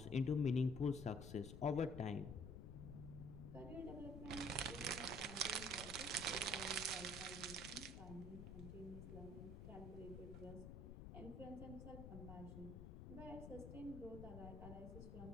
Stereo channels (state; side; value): noise; left; rumble, 8 dB below the sound